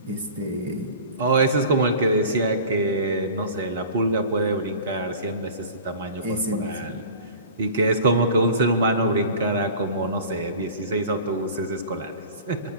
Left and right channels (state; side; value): inverted; both; correlation -0.40